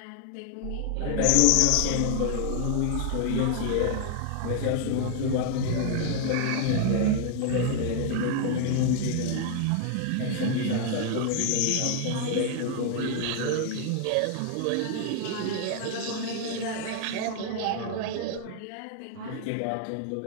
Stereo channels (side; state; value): both; different; correlation 0.00